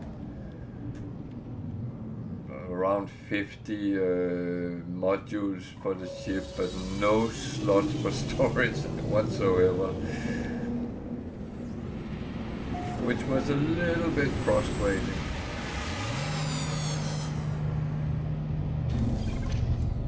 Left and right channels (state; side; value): identical; both; correlation 1.00